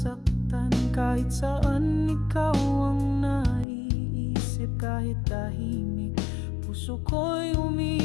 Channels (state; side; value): drops out; right; at 3.7 s